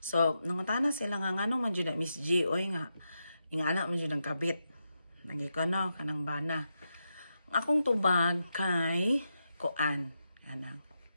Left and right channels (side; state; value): both; inverted; correlation -0.86